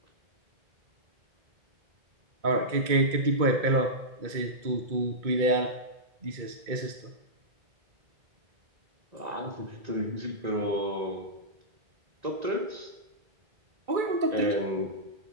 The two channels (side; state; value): left; late; 2.2 ms